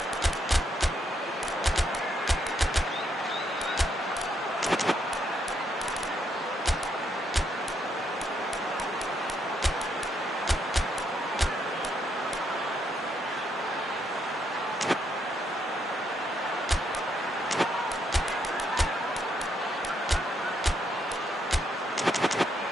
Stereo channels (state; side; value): normal; both; correlation 0.76